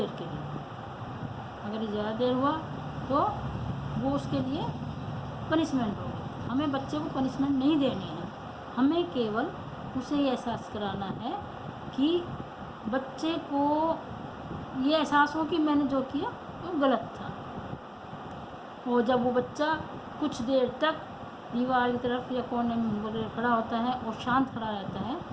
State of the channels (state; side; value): identical; both; correlation 1.00